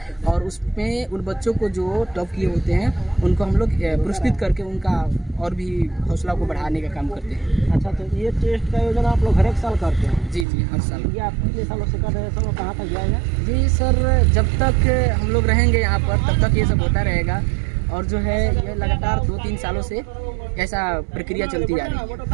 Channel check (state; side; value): drops out; left; at 10.5 s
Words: और उसमें उन बच्चों को जो टॉप किए होते हैं उनको हम लोग पुरस्कृत करके उनका और भी हौसला को बढ़ाने का काम करते हैं। अच्छा, तो ये टेस्ट का आयोजन आप लोग हर एक साल करते हैं? जी हर साल। ये आप कितने सालों से कर रहे हैं सर, और कहाँ तक जाएगा? जी सर, जब तक हम लोग रहेंगे यहाँ पर तब तक ये सब होता रहेगा और जो है ये लगातार 2-3 सालों से ऐसा प्रक्रिया चलती जा रही